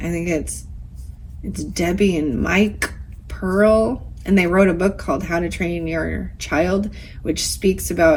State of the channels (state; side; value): identical; both; correlation 1.00